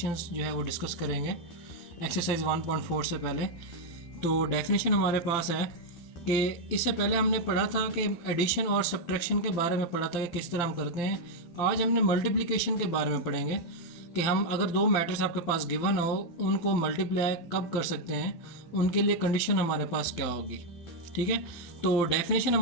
जो है वो डिस्कस करेंगे एक्सरसाइज 1.4 से पहले। तो डेफिनेशन हमारे पास है कि इससे पहले हमने पढ़ा था कि एडिशन और सब्ट्रैक्शन के बारे में पढ़ा था कि किस तरह हम करते हैं। आज हमने मल्टीप्लिकेशन के बारे में पढ़ेंगे कि हम अगर दो मैट्रिक्स आपके पास गिवन हो उनको मल्टीप्लाई कब कर सकते हैं, उनके लिए कंडीशन हमारे पास क्या होगी। ठीक है, तो डेफिनेशन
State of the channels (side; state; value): right; late; 12 ms